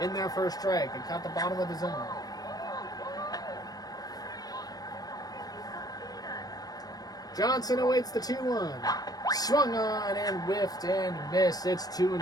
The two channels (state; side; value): late; right; 0.19 ms